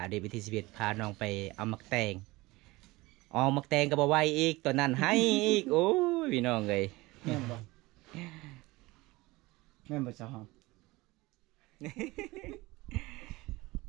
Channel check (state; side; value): quieter; left; 21.1 dB